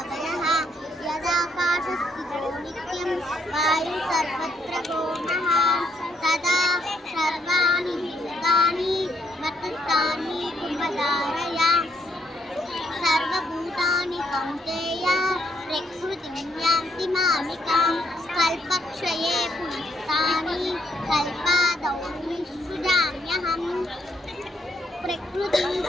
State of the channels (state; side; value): normal; both; correlation 0.73